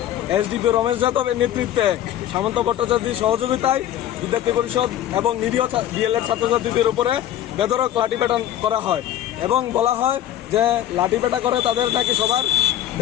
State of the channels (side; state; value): right; quieter; 11.9 dB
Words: এসডিপি রমেশ যাদবের নেতৃত্বে সামন্ত ভট্টাচার্যের সহযোগিতায় বিদ্যার্থী পরিষদ এবং নিরীহ ডিএলএড ছাত্রছাত্রীদের উপরে বেধড়ক লাঠিপেটা করা হয় এবং বলা হয় যে লাঠিপেটা করে তাদের নাকি সবার